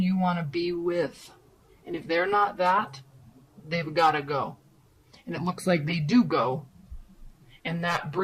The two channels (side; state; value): both; identical; correlation 1.00